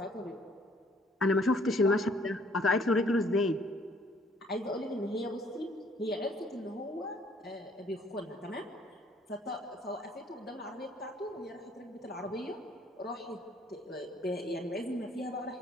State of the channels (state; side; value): normal; both; correlation 0.61